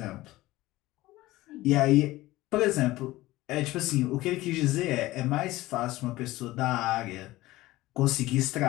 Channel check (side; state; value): right; quieter; 17.8 dB